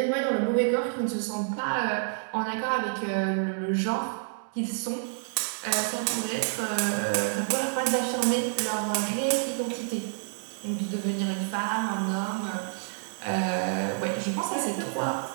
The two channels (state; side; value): silent; left; digital silence